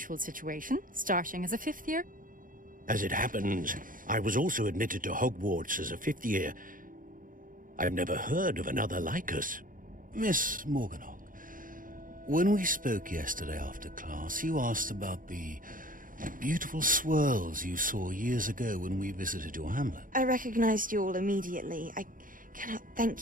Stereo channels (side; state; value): left; late; 0.40 ms